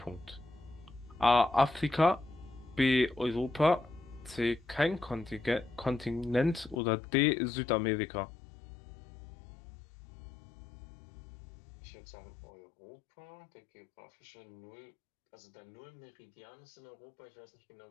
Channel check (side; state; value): right; drops out; at 6.8 s